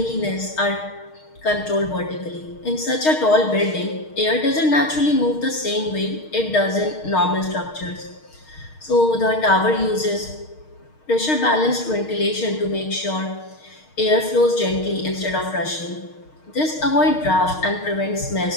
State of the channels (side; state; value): right; late; 6.5 ms